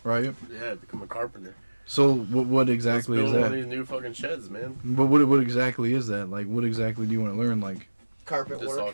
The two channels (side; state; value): both; inverted; correlation -1.00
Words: right? Yeah, become a carpenter. So what exactly Let's is build one of that? these new fucking sheds, man. But what exactly is that? Like what exactly do you want to learn? Like Carpet Just all